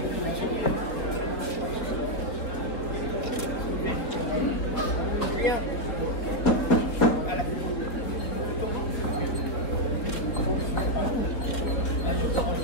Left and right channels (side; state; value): right; late; 3.8 ms